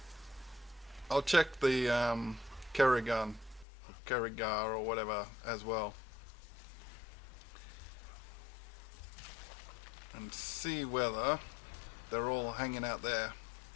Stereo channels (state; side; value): drops out; right; at 3.7 s